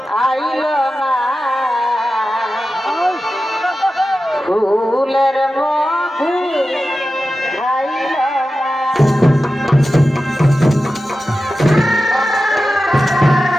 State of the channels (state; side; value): normal; both; correlation 0.93